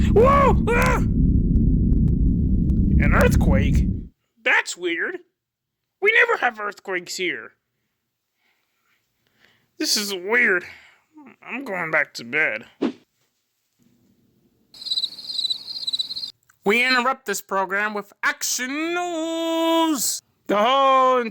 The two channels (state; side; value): identical; both; correlation 1.00